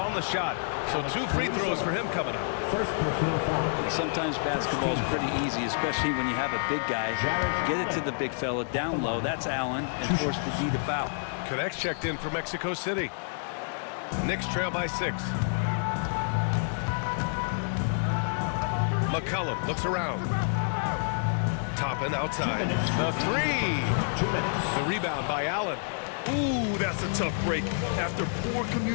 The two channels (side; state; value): right; silent; digital silence